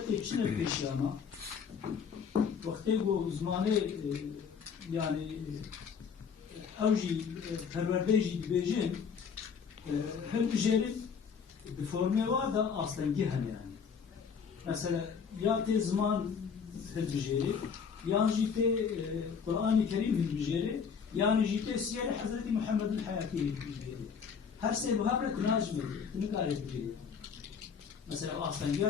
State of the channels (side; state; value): right; quieter; 6.4 dB